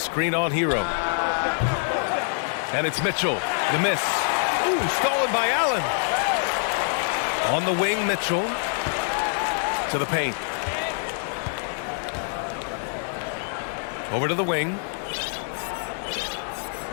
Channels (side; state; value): right; silent; 59 dB below the other